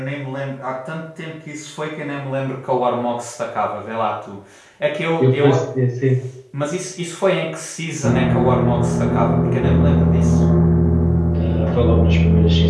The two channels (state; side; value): identical; both; correlation 1.00